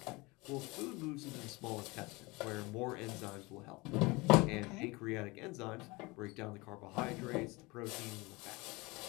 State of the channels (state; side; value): quieter; right; 24.1 dB